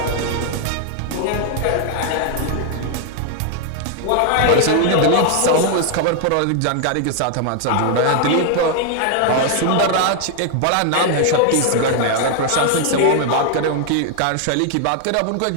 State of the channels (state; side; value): different; both; correlation 0.00